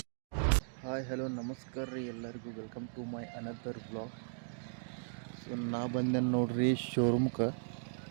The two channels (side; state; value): left; silent; digital silence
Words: ಹಾಯ್ ಹಲೋ ನಮಸ್ಕಾರ ರೀ ಎಲ್ಲರಿಗೂ. Welcome to my another blog. So ನಾ ಬಂದೆ ನೋಡ್ರಿ ಶೋರೂಮ್ಗೆ.